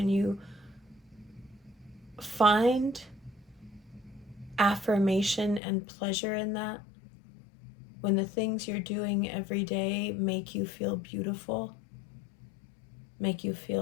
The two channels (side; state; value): right; drops out; at 5.6 s